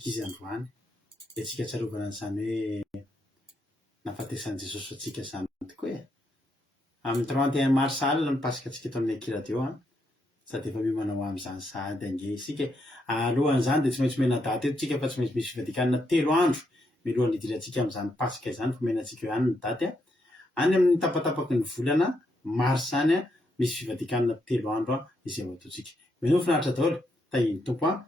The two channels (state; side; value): normal; both; correlation 0.79